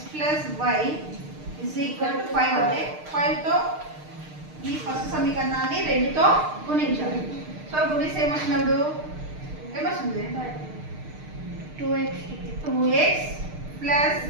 plus why is equal to 5 అంటే 5తో ఈ ఫస్ట్ సమీకరణాన్ని రెండుతో గుణించాలి. సో గుణిస్తే ఏమొచ్చినప్పుడు ఏమొస్తుంది? 2x plus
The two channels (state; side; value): late; left; 6.6 ms